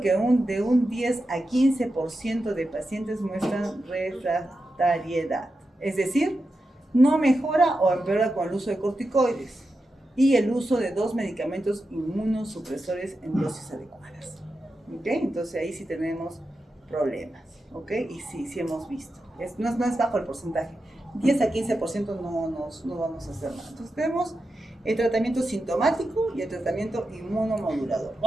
de un 10 a 15% de pacientes muestran refractariedad, es decir, no mejora o empeora con el uso de corticoides y el uso de 2 medicamentos inmunosupresores en dosis adecuadas. ¿Ok? Entonces ahí sí tenemos problemas, ¿ok? Y sí hemos visto. No es bajo el porcentaje. 10 a 15% no vamos a hacer nada. Entonces tenemos el tratamiento sintomático y el tratamiento inmunomodulador.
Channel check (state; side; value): normal; both; correlation 0.89